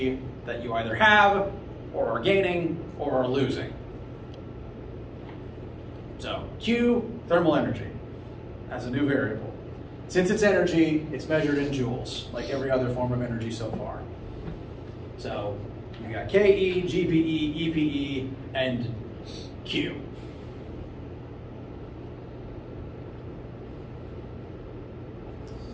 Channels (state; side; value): identical; both; correlation 1.00